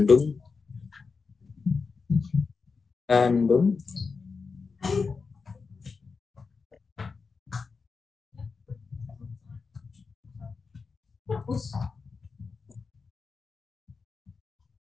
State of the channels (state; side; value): quieter; right; 4.8 dB